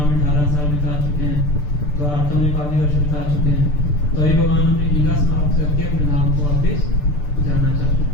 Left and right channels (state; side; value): late; right; 6.8 ms